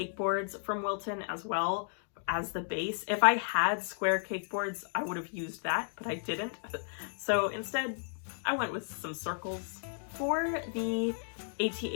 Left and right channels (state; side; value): silent; right; digital silence